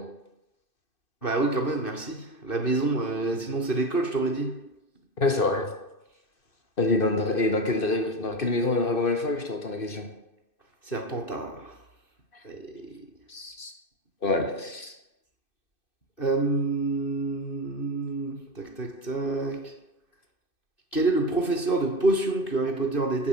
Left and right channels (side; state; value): right; late; 2.6 ms